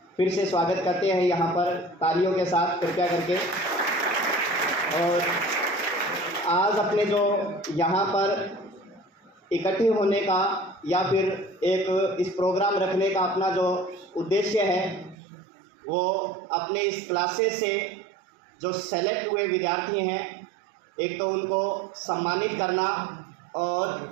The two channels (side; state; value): left; drops out; at 15.2 s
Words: फिर से स्वागत करते हैं यहाँ पर तालियों के साथ कृपया करके। और आज अपने जो यहाँ पर इकट्ठे होने का या फिर एक इस प्रोग्राम रखने का अपना जो उद्देश्य है वो अपने इस क्लासेस से जो सेलेक्ट हुए विद्यार्थी हैं, एक तो उनको सम्मानित करना